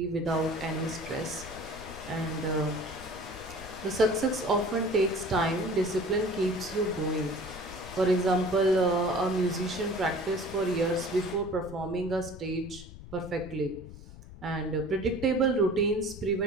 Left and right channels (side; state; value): left; noise; rumble, 15 dB below the sound